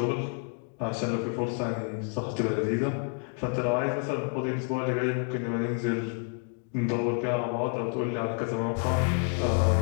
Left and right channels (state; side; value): quieter; right; 37.6 dB